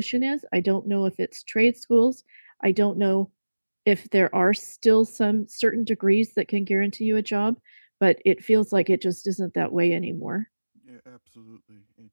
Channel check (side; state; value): both; inverted; correlation -1.00